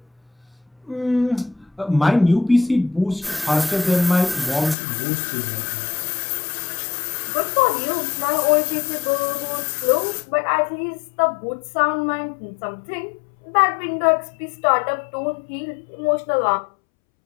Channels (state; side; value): drops out; right; at 4.8 s